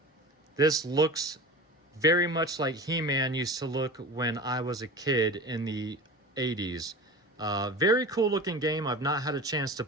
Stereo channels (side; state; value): both; normal; correlation 0.33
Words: This looks very much like He-Man used to look when I was a kid in the 80s. Very cool looking game. I've not had a chance to